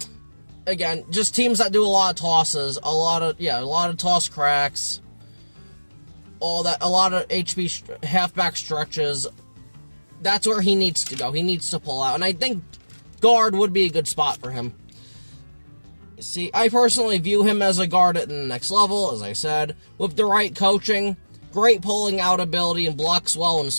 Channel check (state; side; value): inverted; both; correlation -1.00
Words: just teams that do a lot of tosses, a lot of toss cracks, all that, a lot of HB halfback stretches. That's where he needs to go. He needs to pull out, and I think guard would be a good spot for him. See, I personally view him as a guard at the next level, as I said, with the right coaching, great pulling out ability, and blocks well in